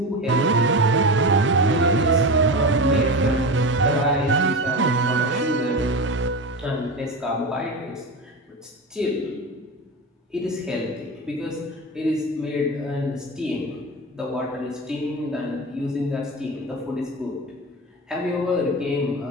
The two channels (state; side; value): normal; both; correlation 0.24